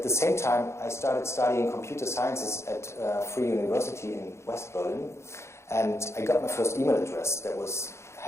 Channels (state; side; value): late; right; 0.13 ms